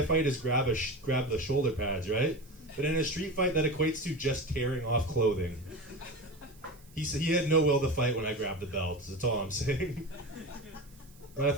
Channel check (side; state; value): right; noise; hiss, 27 dB below the sound